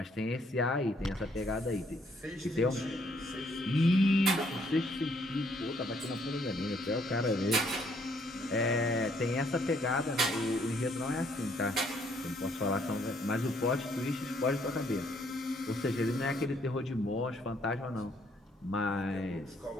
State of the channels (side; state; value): both; normal; correlation 0.67